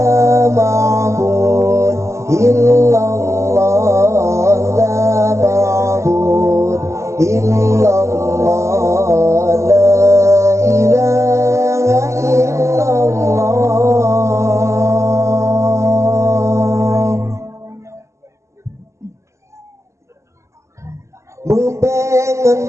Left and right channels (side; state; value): left; late; 0.14 ms